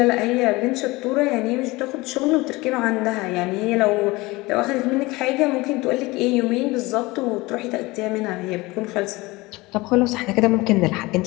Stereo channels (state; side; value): quieter; right; 21.8 dB